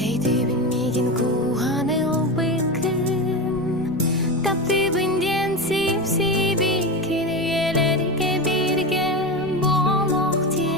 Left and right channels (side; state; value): right; noise; rumble, 20 dB below the sound